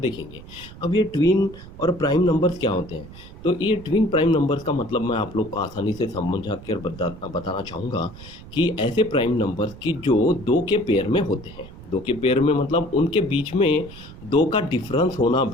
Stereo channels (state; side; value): noise; right; rumble, 17 dB below the sound